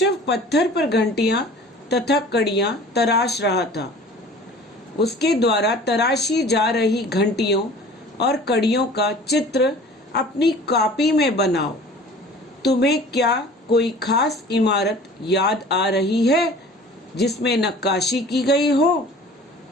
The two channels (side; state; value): both; normal; correlation 0.45